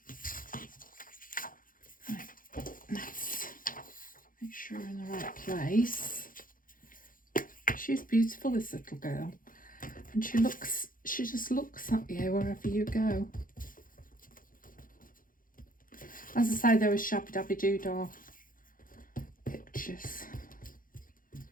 let's make sure we're in the right place. She's beautiful, this little girl, and she just looks at you wherever you go. As I say, there were Shabby Dabby Doodah pictures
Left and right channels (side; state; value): right; late; 0.40 ms